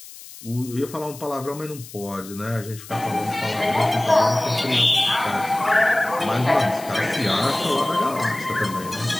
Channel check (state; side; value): noise; left; hiss, 16 dB below the sound